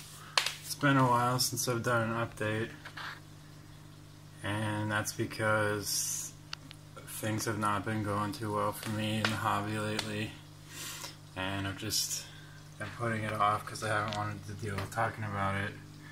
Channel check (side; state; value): both; identical; correlation 1.00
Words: It's been a while since I've done an update, and that's because things have not been going too well for me in the hobby lately, and I've just been putting it off because I haven't wanted to deal with talking about it